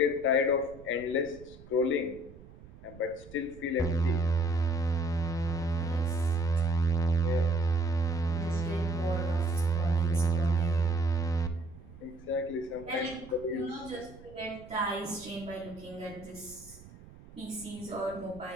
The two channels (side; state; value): right; noise; rumble, 19 dB below the sound